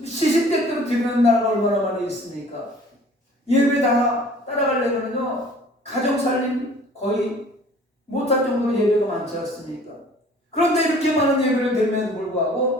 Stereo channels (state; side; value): normal; both; correlation 0.50